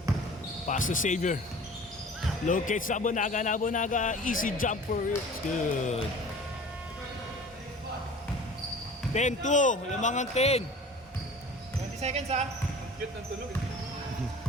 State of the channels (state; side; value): normal; both; correlation 0.43